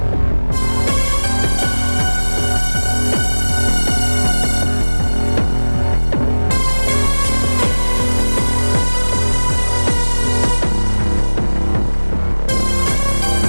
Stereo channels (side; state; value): both; inverted; correlation -1.00